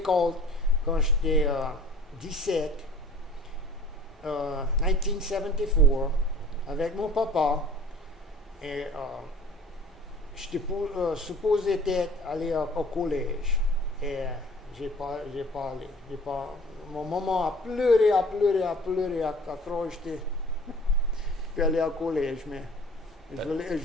quand j'étais 17, 1974, avec mon papa. Et j'étais supposé aller au collège. Et j'ai pas allé. Mon maman a pleuré, à croire que j'étais pu aller au collège, mais je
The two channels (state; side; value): normal; both; correlation 0.48